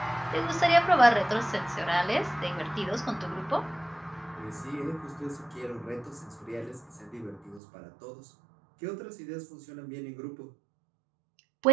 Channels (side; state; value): left; drops out; at 7.6 s